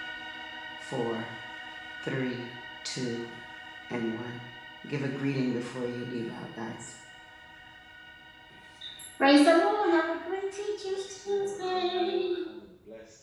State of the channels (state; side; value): identical; both; correlation 1.00